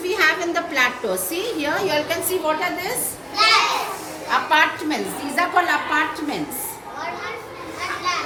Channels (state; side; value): identical; both; correlation 1.00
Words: we have in the plateau? See here, you all can see what are this? Apartments. These are called apartments.